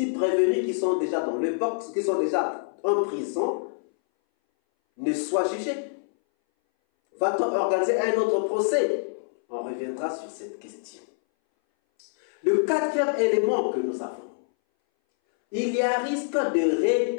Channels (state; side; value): silent; right; 60 dB below the other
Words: prévenus qui sont déjà dans le box, qui sont déjà en prison, ne soient jugés? Va-t-on organiser un autre procès? On reviendra sur cette question. Le 4e élément que nous avons, il y a risque de